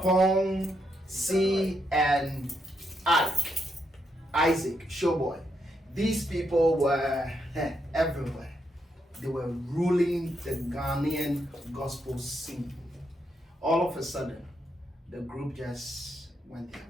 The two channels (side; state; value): both; normal; correlation 0.79